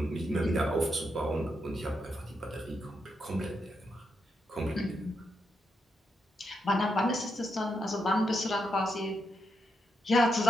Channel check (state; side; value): normal; both; correlation 0.83